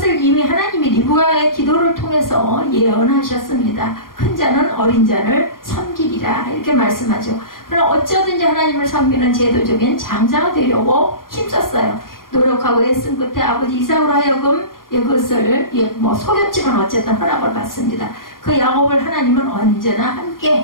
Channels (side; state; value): right; late; 0.91 ms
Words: 이미 하나님이 리브가의 기도를 통해서 예언하셨습니다. 큰 자는 어린 자를 섬기리라 이렇게 말씀하죠. 그러나 어쩌든지 하나님을 섬기는 제도적인 장자가 되려고 힘썼어요. 노력하고 애쓴 끝에 아버지 이삭으로 하여금 그것을 속였지만 어쨌든 허락을 받습니다. 그 야곱을 하나님은 언제나